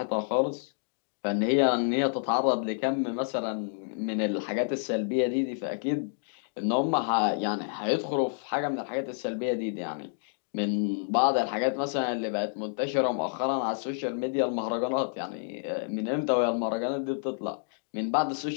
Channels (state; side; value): silent; right; digital silence